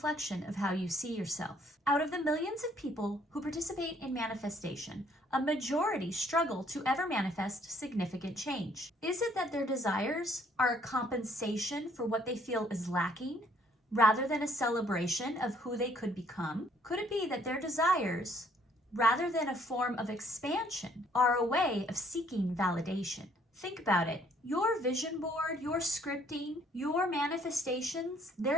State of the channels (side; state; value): both; normal; correlation 0.64